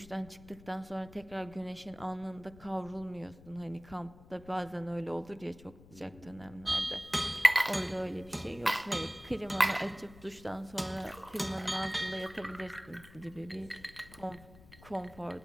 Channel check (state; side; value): noise; left; rumble, 20 dB below the sound